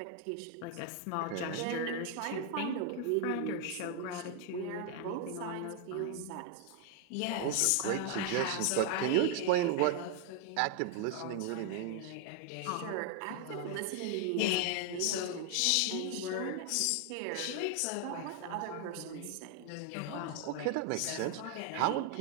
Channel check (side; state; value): both; different; correlation 0.00